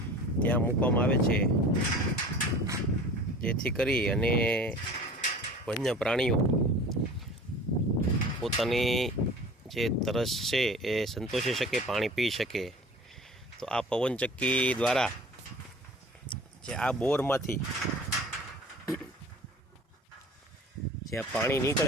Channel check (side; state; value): both; normal; correlation 0.42